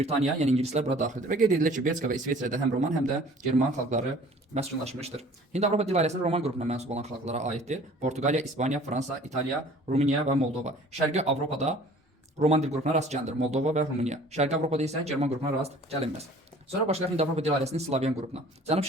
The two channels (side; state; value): both; normal; correlation 0.50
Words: yəni ingilislər bura daxildir. Və qeyd edilir ki, Belçika və İsveçrədə həm Roman, həm də German xalqları məskunlaşmışdır. Hind-Avropa dil ailəsinin Roman qrupuna mənsub olan xalqlara aiddir. Portuqaliya, İspaniya, Fransa, İtaliya, Rumıniya və Moldova. Şərqi Avropada Roman dil qrupuna rast gəlinir. Moldova və Rumıniya. Şərqi Avropada isə German qrupuna rast gəlinməz. Sonra başlayaq Hind-Avropa dil ailəsinin Slavyan qrupuna.